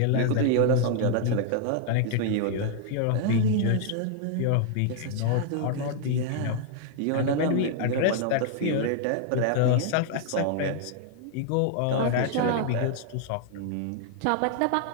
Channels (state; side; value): different; both; correlation -0.01